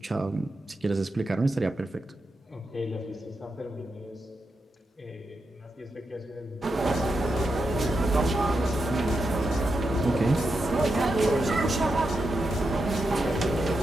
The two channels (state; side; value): normal; both; correlation 0.86